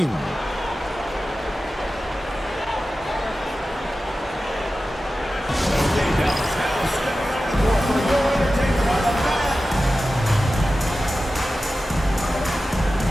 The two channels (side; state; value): both; normal; correlation 0.94